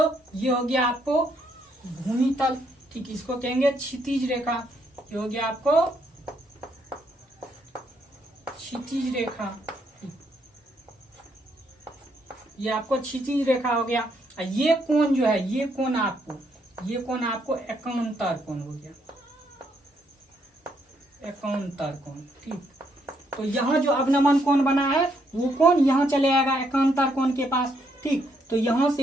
ये हो गया आपको भूमि तल। ठीक, इसको कहेंगे क्षितिज रेखा। ये हो गया आपको क्षितिज रेखा। ये आपको क्षितिज रेखा हो गया। ये कोण जो है, ये कोण आपको एकांतर कोण हो गया, एकांतर कोण। ठीक, तो यहाँ जो अवनमन कोण बना है वो कोण यहाँ चले आएगा एकांतर कोण के पास। ठीक, तो यहाँ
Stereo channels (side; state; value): both; normal; correlation 0.74